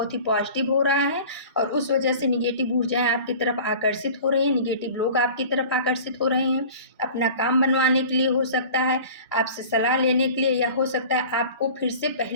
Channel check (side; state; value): both; inverted; correlation -0.41